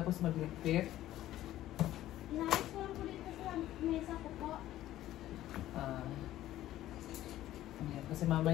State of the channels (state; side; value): quieter; right; 13.9 dB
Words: magligpit? Inayos ko lang po dito sa mesa ko po. Ayan, kasi